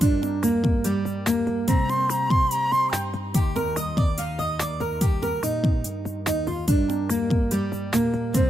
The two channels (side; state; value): both; normal; correlation 0.86